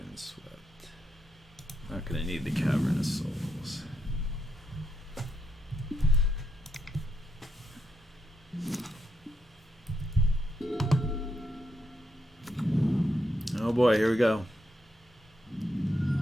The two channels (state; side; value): normal; both; correlation 0.81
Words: Not going to need the Cavern of Souls. Oh boy, here we go.